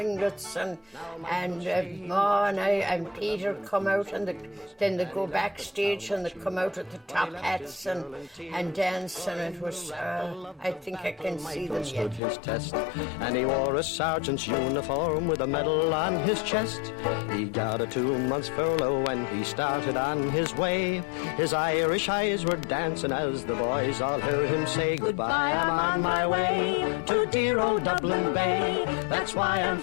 and Ma and I and Peter come out, and then they go backstage and they come out with the top hats and dance, and it was, I think I can see them yet. His test, and he wore a sergeant's uniform with a medal on his chest. He got a 2-month furlough when he started on his way. His Irish eyes were dancing as the boys all heard him say, "Goodbye, I'm on my way to dear old Dublin Bay. That's why I'm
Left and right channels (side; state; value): right; drops out; at 12.2 s